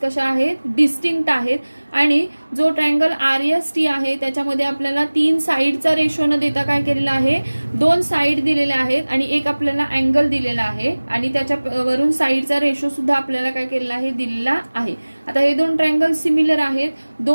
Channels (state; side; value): inverted; both; correlation -1.00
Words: आहेत, डिस्टिंक्ट आहेत, आणि जो ट्रायंगल RST आहे त्याच्यामध्ये आपल्याला तीन साइडचा रेशो न देता काय केलेलं आहे, दोन साइड दिलेल्या आहेत आणि एक आपल्याला अँगल दिलेला आहे आणि त्याच्यावरून साइडचा रेशो सुद्धा आपल्याला काय केलेला आहे, दिलेला आहे. आता हे दोन ट्रायंगल सिमिलर आहेत,